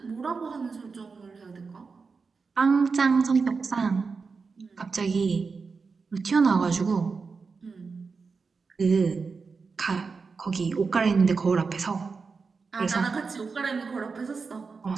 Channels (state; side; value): quieter; left; 4.8 dB